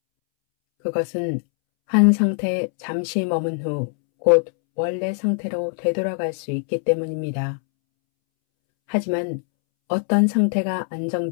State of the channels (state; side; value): silent; right; 64 dB below the other